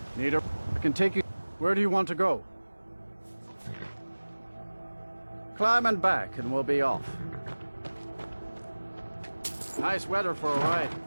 I can take you. Where do you want to go? Climb and back, and we'll be off. Nice weather for a ride.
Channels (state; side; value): inverted; both; correlation -1.00